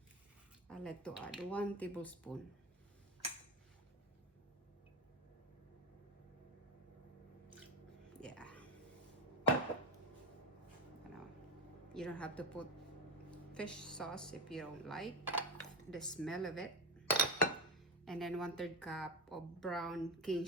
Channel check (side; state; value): both; normal; correlation 0.13